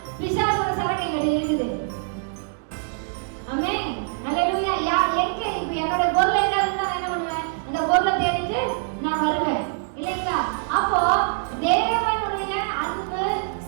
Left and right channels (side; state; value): left; silent; digital silence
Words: பிசாசோட சரகைகள் இருக்குது. ஆமென். ஹல்லேலூயா. எங்க இப்ப என்னோட பொருள் எங்க இருந்தா என்ன பண்ணுவேன்? இந்த பொருளை தேடிட்டு நான் வருவேன் இல்லைங்களா? அப்போ தேவனுடைய அன்பு,